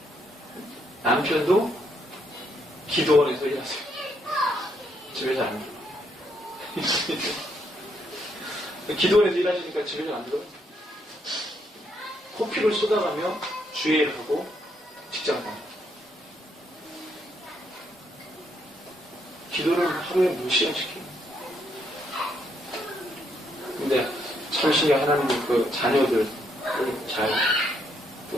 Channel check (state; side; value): normal; both; correlation 0.74